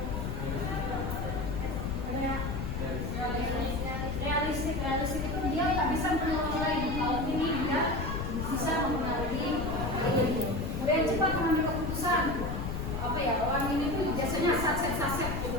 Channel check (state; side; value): noise; left; rumble, 4 dB below the sound